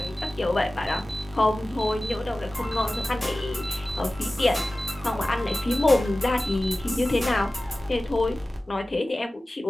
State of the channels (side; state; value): both; normal; correlation 0.96